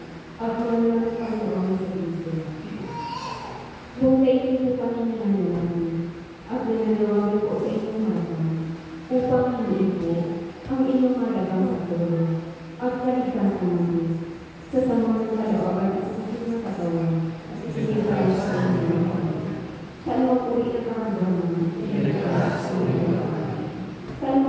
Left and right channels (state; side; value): identical; both; correlation 1.00